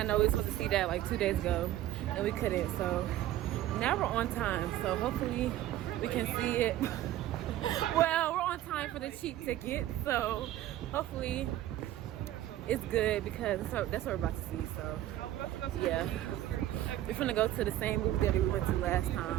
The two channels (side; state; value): left; quieter; 13.7 dB